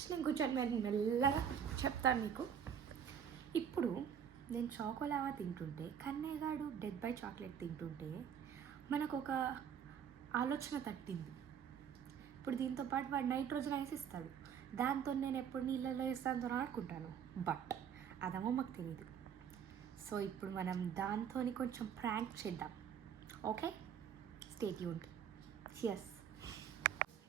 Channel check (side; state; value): left; quieter; 8.1 dB